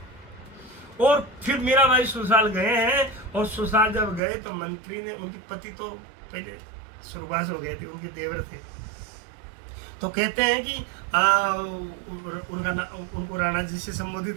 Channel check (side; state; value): left; drops out; at 4.2 s